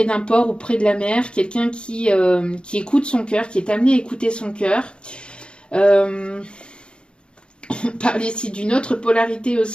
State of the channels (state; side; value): late; right; 0.053 ms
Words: d'un port ou près de la mer, quelqu'un qui écoute son cœur, qui est amené à écouter son cœur. On parle ici d'une autre polarité